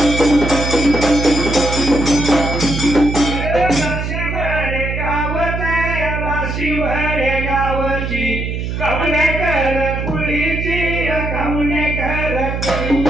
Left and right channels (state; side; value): noise; right; hum, 3 dB below the sound